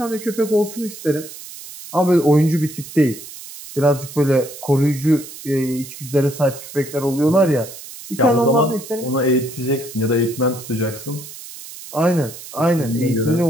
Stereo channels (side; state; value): right; noise; hiss, 14 dB below the sound